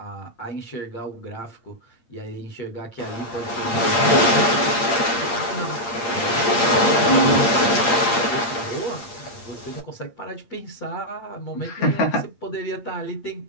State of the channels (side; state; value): right; late; 8.7 ms